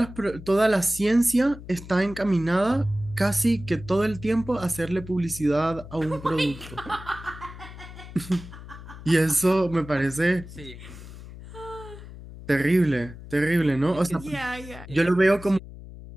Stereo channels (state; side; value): noise; left; hum, 15 dB below the sound